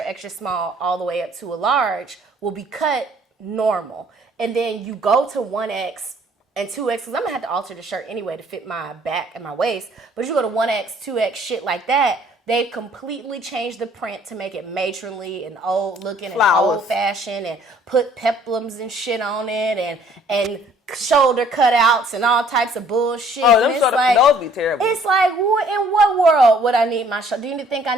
small all the way up to a large will be cut normal. And then you go to 1X and 2X, because I'm going to have to alter the shirt anyway to fit my back and my waist. But you go to 1X, 2X, shit like that, they completely changed the print to make it matronly and old looking and old fashioned and put peplums and shit on it and shoulder cutouts and all types of bullshit. Oh, those be terrible. It's like, in what world would I need my shoulder? Do you think I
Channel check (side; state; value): both; normal; correlation 0.59